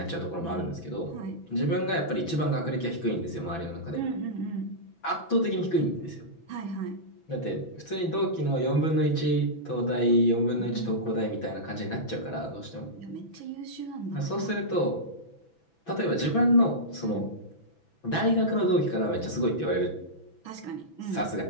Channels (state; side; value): late; right; 6.0 ms